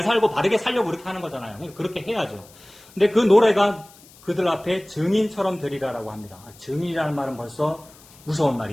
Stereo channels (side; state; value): left; noise; hiss, 24 dB below the sound